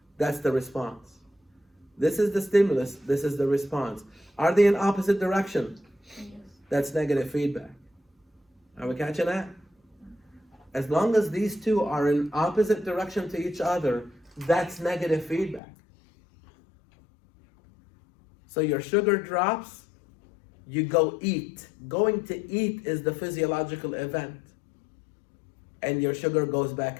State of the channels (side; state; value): right; drops out; at 15.6 s